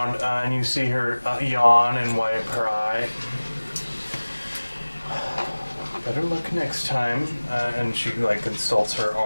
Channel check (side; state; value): both; inverted; correlation -1.00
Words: and you see her yawn and wipe her eye. Better luck next time. And she like consults her